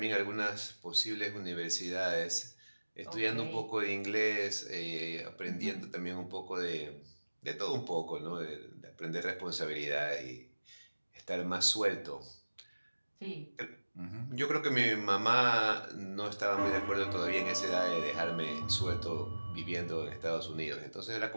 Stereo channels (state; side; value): inverted; both; correlation -1.00